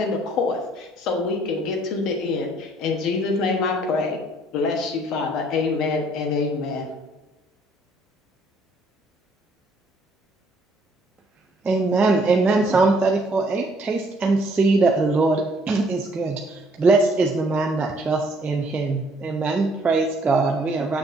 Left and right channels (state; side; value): normal; both; correlation 0.64